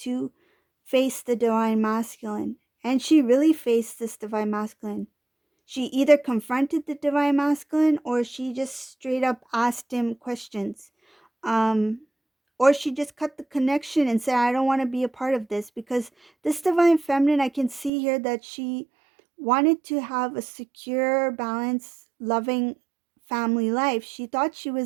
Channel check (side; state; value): left; drops out; at 17.9 s